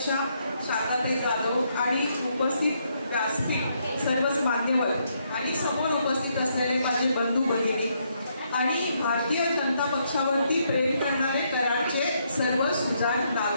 शारदाताई जाधव आणि उपस्थित व्यासपीठ सर्वच मान्यवर आणि समोर उपस्थित असलेले माझे बंधू भगिनी आणि भारतीय जनता पक्षावरती प्रेम करणारे कराडचे सर्व सुजाण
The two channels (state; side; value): inverted; both; correlation -0.75